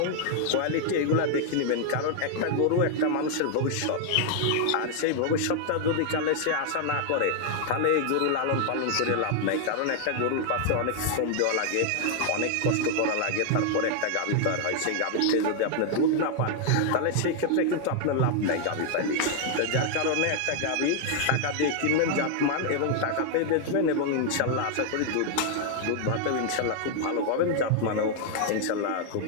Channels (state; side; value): different; both; correlation 0.00